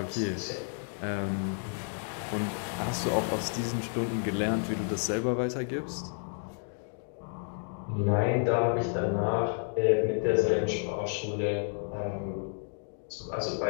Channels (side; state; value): right; silent; 57 dB below the other